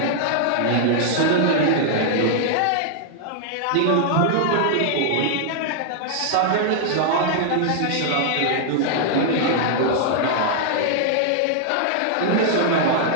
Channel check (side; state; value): both; different; correlation -0.01